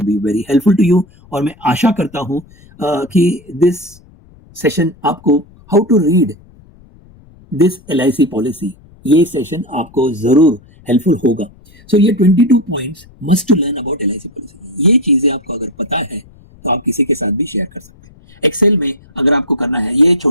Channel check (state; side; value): noise; left; rumble, 26 dB below the sound